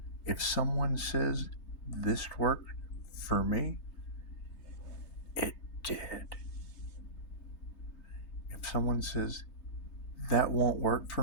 If someone says this worked for me, it did. If someone says that won't work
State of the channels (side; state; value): right; late; 3.3 ms